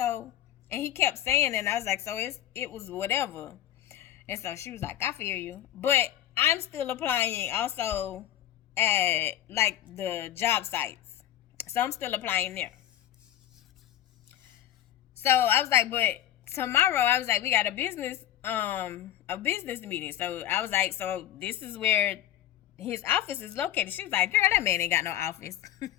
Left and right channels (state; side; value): quieter; right; 12.4 dB